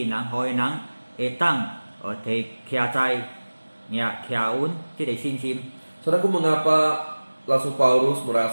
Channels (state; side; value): inverted; both; correlation -1.00